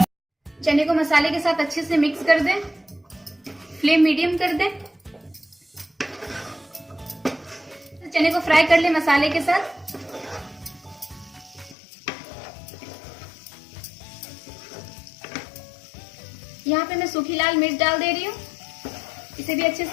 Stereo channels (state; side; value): drops out; right; at 11.8 s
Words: चने को मसाले के साथ अच्छे से मिक्स कर दें। फ्लेम मीडियम कर दें। चने को फ्राई कर लें मसाले के साथ। यहाँ पे मैं सूखी लाल मिर्च डाल दे रही हूँ। इसे भी अच्छे